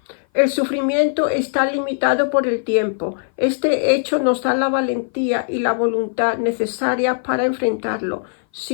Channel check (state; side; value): silent; right; 57 dB below the other